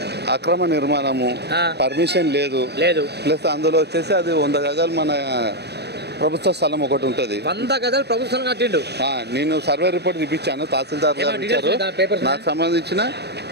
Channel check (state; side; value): late; left; 0.48 ms